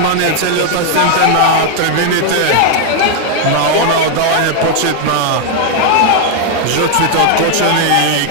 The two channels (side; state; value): both; different; correlation 0.00